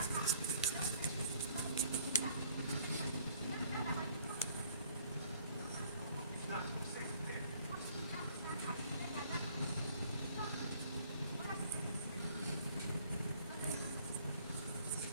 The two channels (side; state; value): both; inverted; correlation -0.60